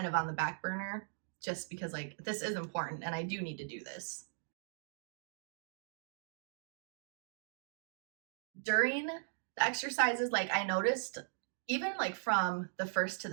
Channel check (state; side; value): silent; left; digital silence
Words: of on the back burner, just because like this is important and I do need to do this. During the exercises, like I noticed even like from the first to